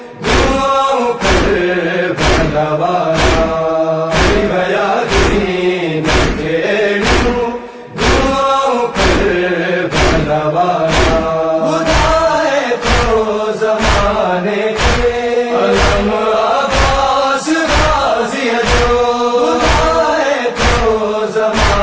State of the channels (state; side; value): identical; both; correlation 1.00